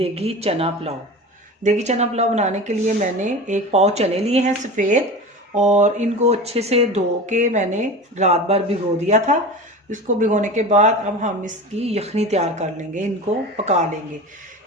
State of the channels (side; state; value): both; normal; correlation 0.31